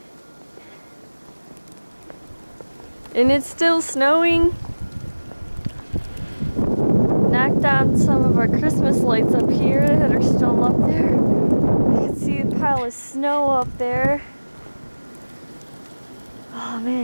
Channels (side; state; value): both; inverted; correlation -1.00